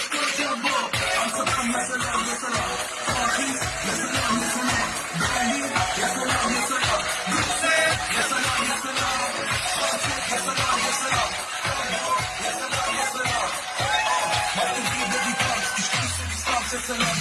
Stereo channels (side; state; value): both; identical; correlation 1.00